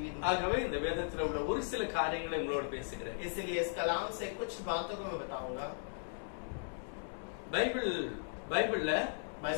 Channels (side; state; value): right; silent; digital silence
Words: ஆகவே இந்த வேதத்தில் உள்ள ஒரு சில காரியங்களை உங்களோடு பேசுகிறேன். इसलिए इस कलाम से कुछ बातों को मैं बताऊंगा. பைபிள்ல